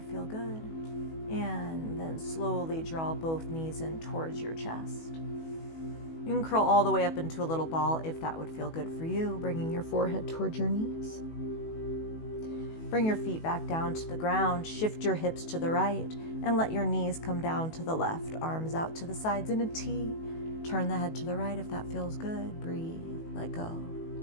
Feel good. And then slowly draw both knees in towards your chest. You can curl all the way up into a little ball if that would feel good for you, bringing your forehead towards your knees. Bring your feet back down to the ground, shift your hips to the right, and let your knees come down to the left, arms out to the sides in a T. Turn the head to the right if that feels good. Breathe, let go,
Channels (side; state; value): right; late; 18 ms